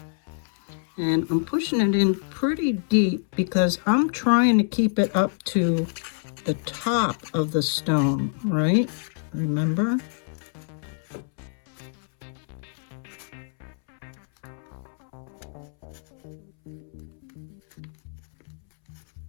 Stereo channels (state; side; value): silent; right; 61 dB below the other